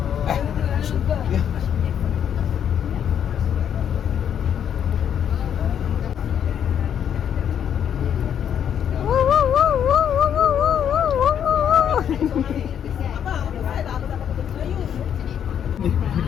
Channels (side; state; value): right; quieter; 8.9 dB